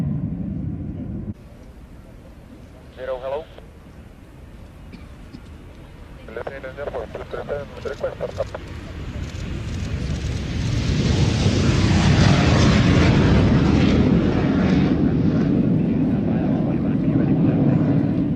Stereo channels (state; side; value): identical; both; correlation 1.00